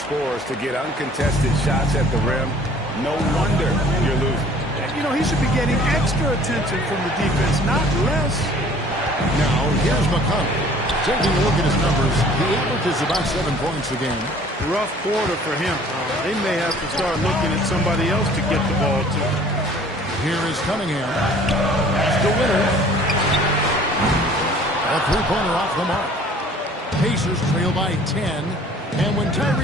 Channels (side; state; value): both; normal; correlation 0.52